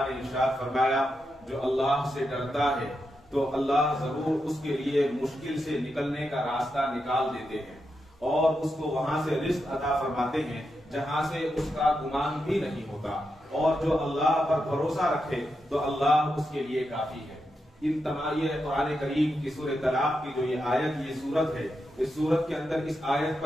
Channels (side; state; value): both; normal; correlation 0.86